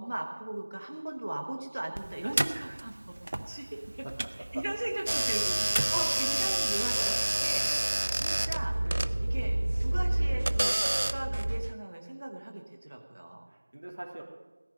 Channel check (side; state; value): both; inverted; correlation -1.00